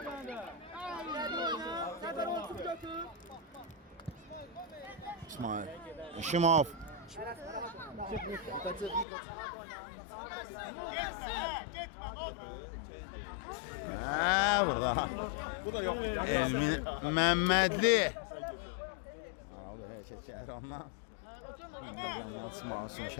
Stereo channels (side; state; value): right; drops out; at 9.1 s